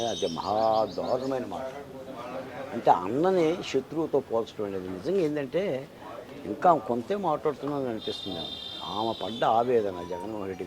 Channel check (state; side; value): identical; both; correlation 1.00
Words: అది మహా దారుణమైన మాట. అంటే అన్నని శత్రువుతో పోల్చడం అనేది నిజంగా ఏంటంటే ఇంకా కొంతే మాట్లాడుతున్నాను అనిపిస్తుంది. ఆమె పడ్డ ఆవేదన జగన్మోహన్ రెడ్డి